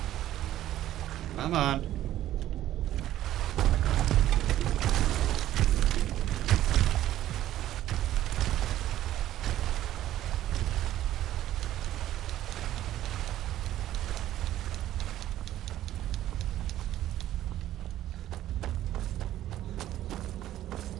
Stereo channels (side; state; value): left; quieter; 13.2 dB